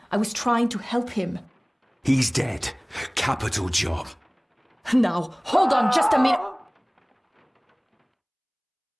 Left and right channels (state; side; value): identical; both; correlation 1.00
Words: I was trying to help him. He's dead. Capital job. Now, hold on just a minute.